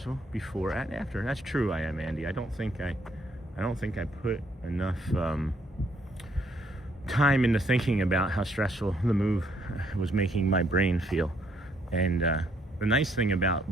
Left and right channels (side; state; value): both; normal; correlation 0.69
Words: before and after. That's true, I am, Andy. I don't think I put enough time into thinking about how stressful the move was making my brain feel. And the nice thing